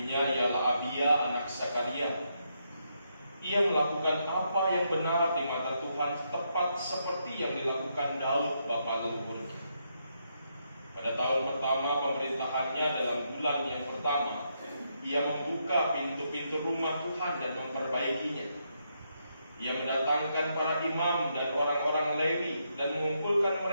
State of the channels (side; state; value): both; inverted; correlation -0.79